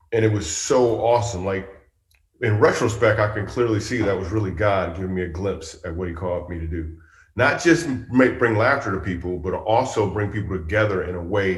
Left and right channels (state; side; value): identical; both; correlation 1.00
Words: And it was so awesome. Like in retrospect, I can clearly see that was really God giving me a glimpse at what he called me to do. Not just bring laughter to people, but also bring people together in a